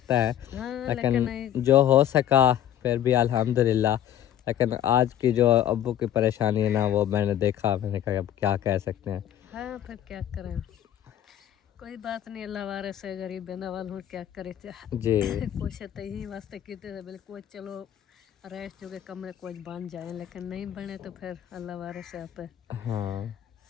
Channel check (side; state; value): right; quieter; 11.1 dB